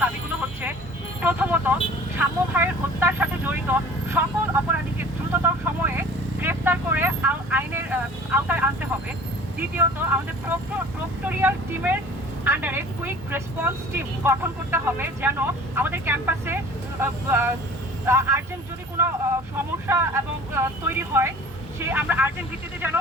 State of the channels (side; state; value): both; normal; correlation 0.45